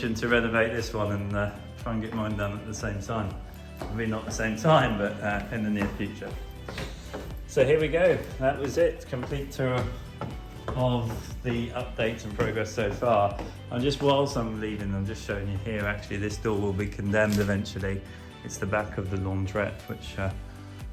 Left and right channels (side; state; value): both; identical; correlation 1.00